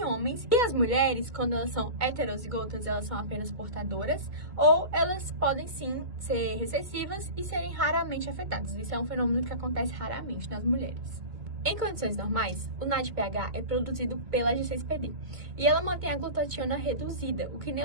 homens. E as mulheres, quando elas são heterozigotas, elas são apenas portadoras, ou elas podem sim ser recessivas e serem raramente afetadas. Isso é um fenômeno que acontece raramente nas mulheres. Em condições normais, o NADPH é produzido pela G6PD e ela mantém a glutationa reduzida, o que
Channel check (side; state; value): left; late; 2.1 ms